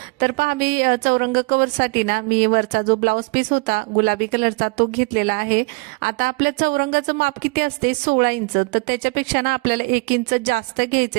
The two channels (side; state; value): left; quieter; 28.3 dB